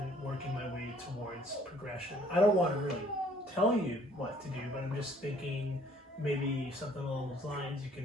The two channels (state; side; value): normal; both; correlation 0.60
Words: working my way towards progression? I don't want to really tell you what to do, but I'm just thinking maybe something along those lines you